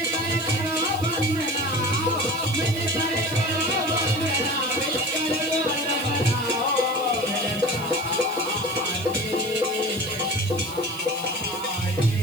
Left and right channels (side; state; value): right; noise; hiss, 17 dB below the sound